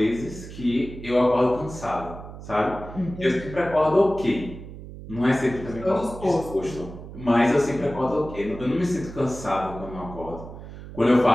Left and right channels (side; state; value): right; noise; hum, 13 dB below the sound